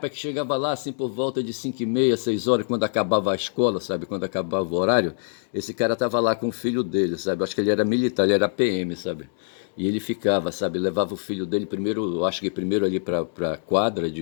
que chegava lá assim por volta de 5h30, 6 horas, quando acabava a escola, sabe? Quando acabava o horário, esse cara tava lá com o filho dele, sabe? Acho que ele era militar, ele era PM, sabe? E ele ficava, sabe? Levava o filho dele primeiro, acho que primeiro ali pra quadra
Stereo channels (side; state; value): right; silent; 62 dB below the other